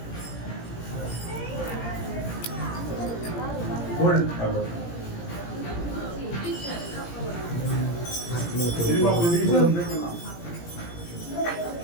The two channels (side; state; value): right; late; 17 ms